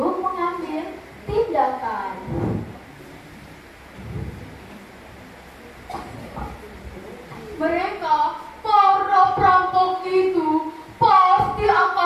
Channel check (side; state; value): both; identical; correlation 1.00